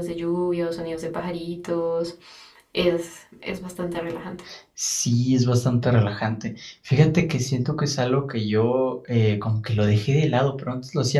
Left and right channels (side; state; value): both; identical; correlation 1.00